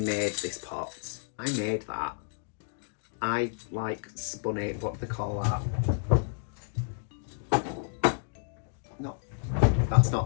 this pot. I made that. I like spun it, what do they call that? No, that's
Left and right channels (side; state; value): right; silent; digital silence